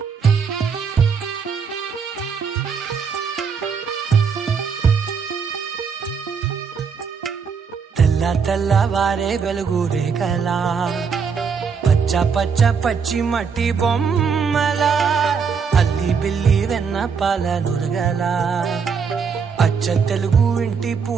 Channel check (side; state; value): left; quieter; 6.0 dB